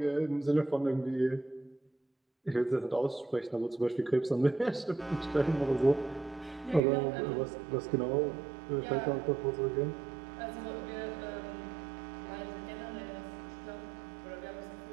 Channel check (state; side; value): drops out; left; at 6.8 s